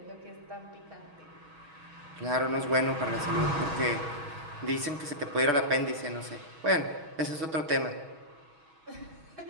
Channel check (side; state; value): left; late; 6.2 ms